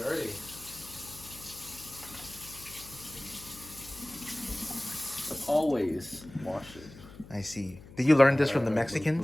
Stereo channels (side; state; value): left; noise; hum, 18 dB below the sound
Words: Always wash it. I see. Did you learn this from the